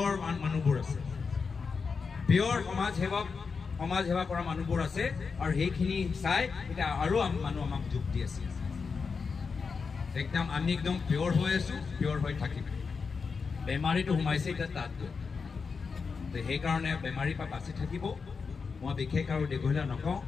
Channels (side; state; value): right; quieter; 5.2 dB